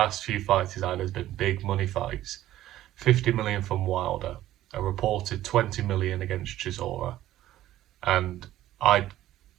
few fights he's had has been big money fights. 50 million from Wilder, a reported 20 million against Chisora, and I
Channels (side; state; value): left; quieter; 13.9 dB